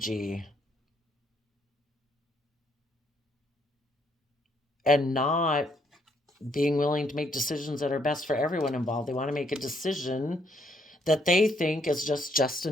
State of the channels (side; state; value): both; normal; correlation 0.70